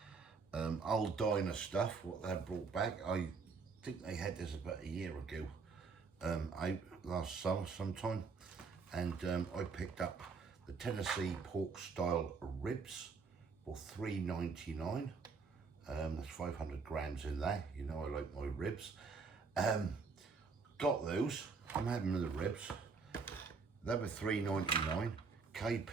Aldiner stuff, what they brought back. I think they had this about a year ago, last summer sometime, and I picked up the Tennessee pork style ribs for $3.99. There's 500 grams in there. You know I like my ribs. Got those. I'm having the ribs. They were $3.99. Kay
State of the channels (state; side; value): quieter; left; 4.9 dB